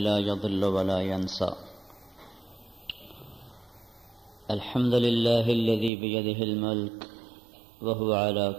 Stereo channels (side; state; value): left; drops out; at 5.9 s